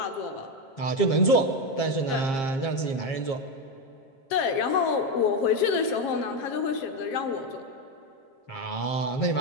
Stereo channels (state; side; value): late; right; 7.5 ms